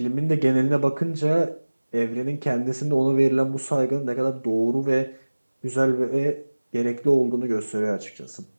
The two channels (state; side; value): inverted; both; correlation -1.00